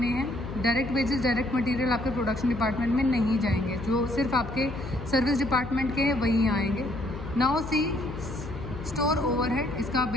हैं। डायरेक्ट वेजेस डायरेक्ट मटेरियल आपके प्रोडक्शन डिपार्टमेंट में नहीं जाएंगे, जो सिर्फ आपके सर्विस डिपार्टमेंट के हैं वही आएंगे। नाउ सी स्टोर ओवरहेड, इसका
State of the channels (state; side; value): noise; left; hum, 11 dB below the sound